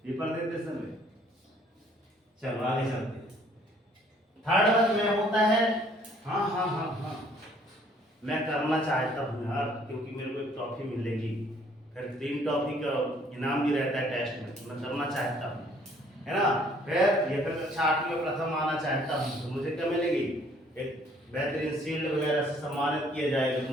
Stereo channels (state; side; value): normal; both; correlation 0.61